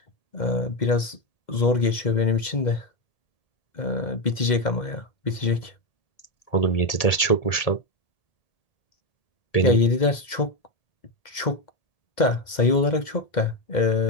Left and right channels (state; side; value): late; right; 2.1 ms